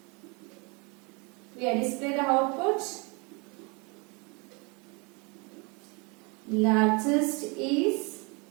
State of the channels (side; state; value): left; quieter; 30.6 dB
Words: we are display the output. Largest is